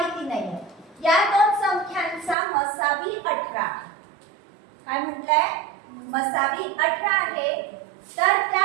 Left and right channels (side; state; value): left; drops out; at 2.4 s